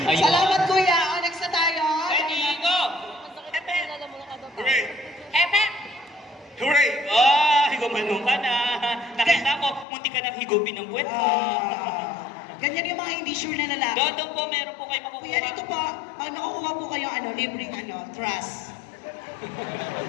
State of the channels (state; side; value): drops out; right; at 9.9 s